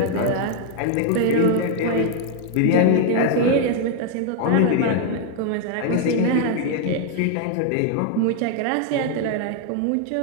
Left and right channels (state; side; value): different; both; correlation 0.00